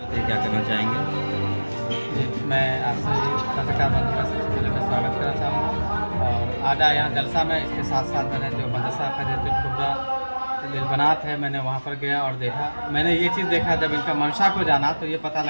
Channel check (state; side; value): inverted; both; correlation -1.00